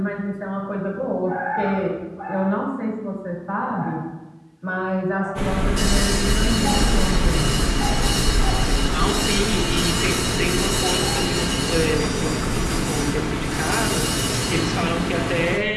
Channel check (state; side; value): identical; both; correlation 1.00